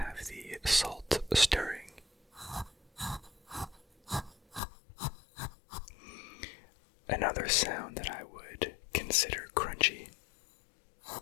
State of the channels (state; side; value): drops out; right; at 4.6 s